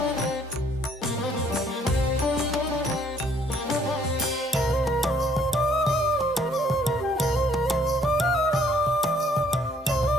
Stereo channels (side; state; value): both; normal; correlation 0.63